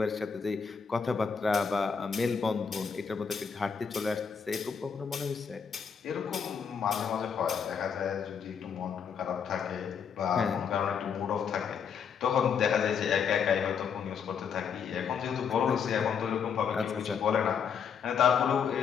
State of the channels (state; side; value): quieter; right; 6.8 dB